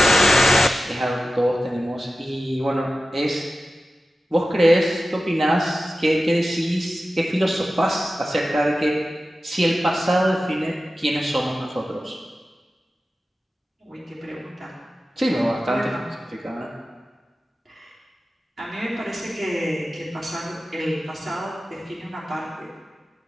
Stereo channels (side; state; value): both; normal; correlation 0.94